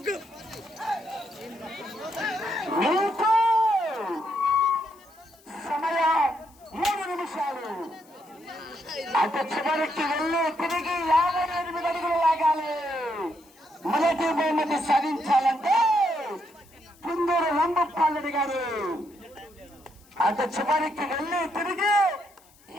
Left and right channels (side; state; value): left; noise; hiss, 28 dB below the sound